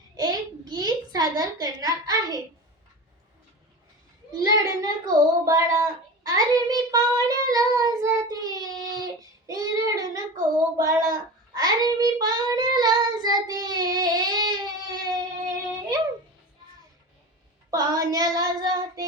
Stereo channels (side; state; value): both; normal; correlation 0.30